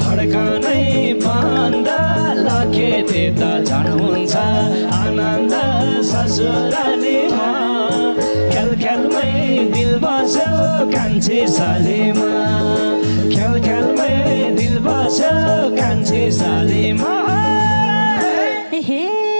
धड्कनै बन्द लखेटे त झन् हुन्छ आनन्द ससुरालीमा खेल खेलमै दिल बस्यो कान्छी सालीमा खेल खेलमै दिल बस्यो कान्छी सालीमा हे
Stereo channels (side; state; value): both; inverted; correlation -1.00